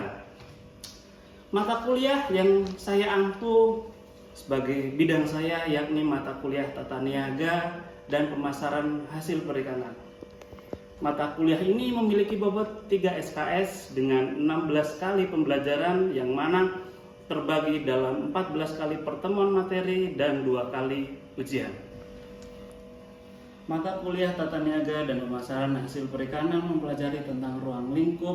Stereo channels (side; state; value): both; identical; correlation 1.00